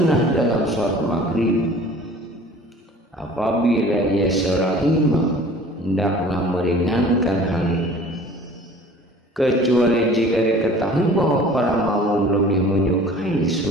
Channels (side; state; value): both; normal; correlation 0.47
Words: dalam sholat maghrib. Apabila ia seorang imam, hendaklah meringankan hal itu, kecuali jika diketahui bahwa para makmum lebih menyukai